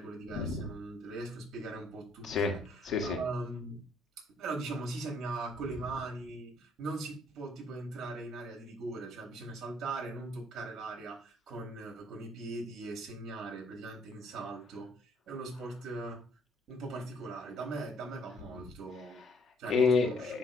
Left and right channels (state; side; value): normal; both; correlation 0.65